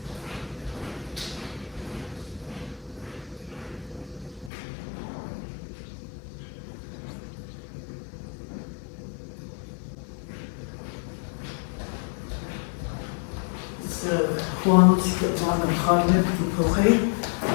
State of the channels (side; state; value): right; drops out; at 4.5 s